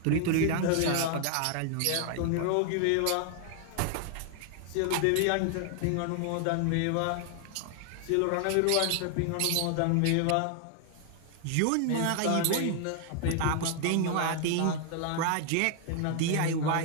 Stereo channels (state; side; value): different; both; correlation 0.00